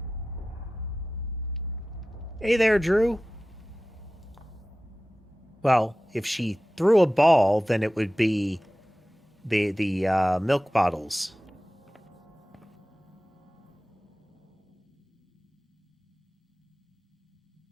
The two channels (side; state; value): both; normal; correlation 0.95